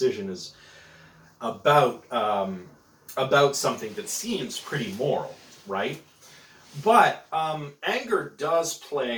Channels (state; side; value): identical; both; correlation 1.00